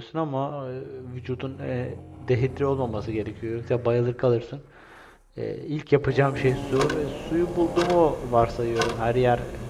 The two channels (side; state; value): both; identical; correlation 1.00